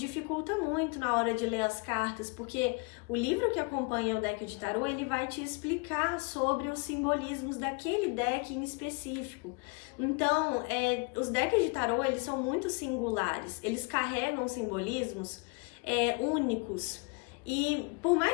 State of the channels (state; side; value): quieter; right; 32.2 dB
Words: muito na hora de ler as cartas, porque o livro que acompanha o deck de tarô, ele vai te explicar sobre os simbolismos daquele deck em específico. Então, os decks de tarô, eles são muito singulares, eles carregam simbolismos únicos. E por